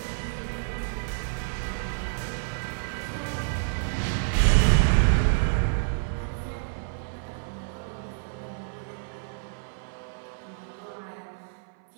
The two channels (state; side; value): silent; left; 57 dB below the other